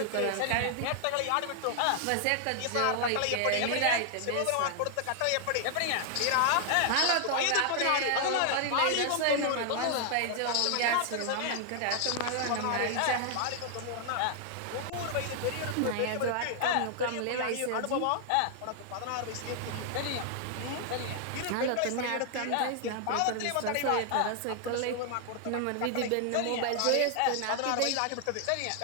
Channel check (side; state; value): both; different; correlation 0.00